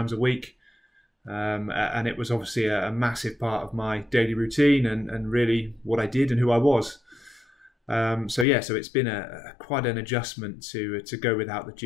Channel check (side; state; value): right; drops out; at 8.5 s